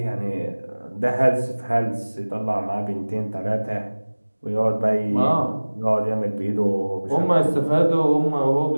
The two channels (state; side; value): inverted; both; correlation -1.00